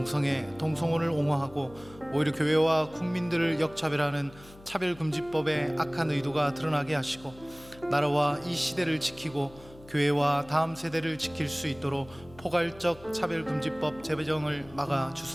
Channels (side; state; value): left; noise; hum, 21 dB below the sound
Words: 옹호하고 오히려 교회와 국민들을 역차별하는 차별금지법의 악한 의도가 드러나게 하시고, 나라와 이 시대를 지키고 교회와 다음 세대를 지킬 수 있도록 포괄적 차별금지법 제정을 막아